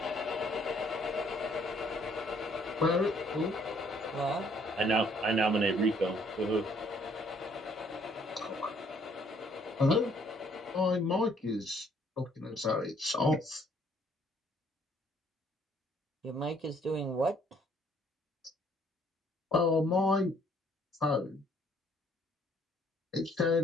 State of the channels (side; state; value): both; normal; correlation 0.63